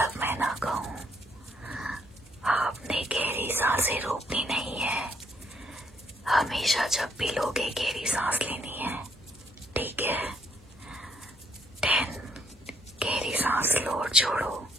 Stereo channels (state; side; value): normal; both; correlation 0.69